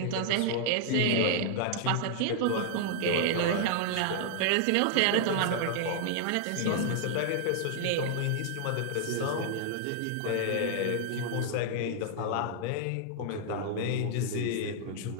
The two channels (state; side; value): different; both; correlation -0.01